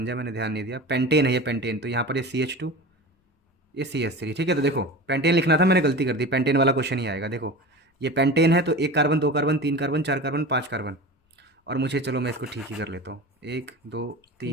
जाए, मैंने ध्यान नहीं दिया। पेंटेन है ये, पेंटेन। तो यहाँ पर ये CH2, ये CH3, ठीक है। तो देखो पेंटेन लिखना था, मैंने गलती कर दी, पेंटेन वाला क्वेश्चन ही आएगा। देखो ये पेंटेन है, तो 1 carbon 2 carbon 3 carbon 4 carbon 5 carbon, और मुझे, चलो मैं इसको ठीक ही कर लेता हूँ, 1 2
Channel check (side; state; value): both; normal; correlation 0.32